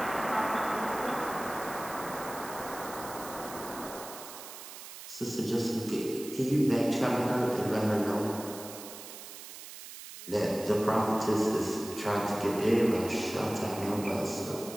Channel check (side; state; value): right; noise; hiss, 13 dB below the sound